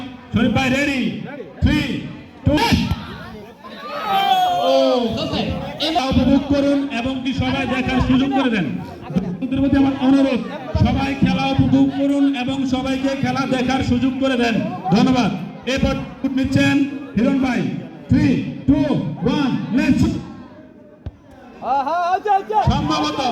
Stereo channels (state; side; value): identical; both; correlation 1.00